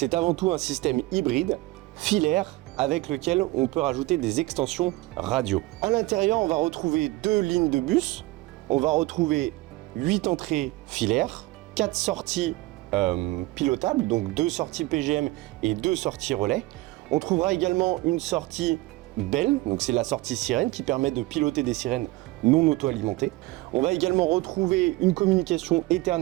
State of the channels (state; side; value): quieter; left; 20.0 dB